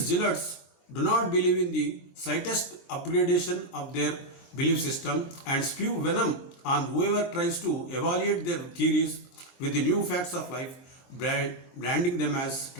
do not believe in the slightest upgradation of their belief system and spew venom on whoever tries to evaluate their theories with the new facts of life, branding them as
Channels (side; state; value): right; late; 22 ms